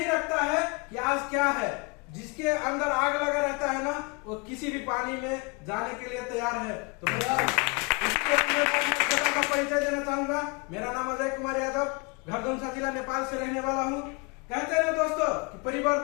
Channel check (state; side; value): quieter; right; 30.1 dB